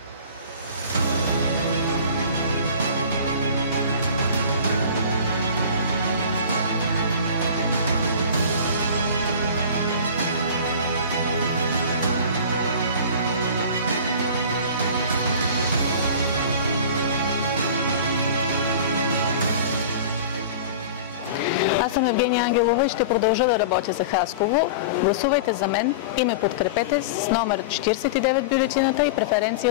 Аз съм Евгения Ангелова и ще продължа да работя за Хасково. Гласувайте за мен и ме подкрепете с номер 49 бюлетината и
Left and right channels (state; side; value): inverted; both; correlation -0.36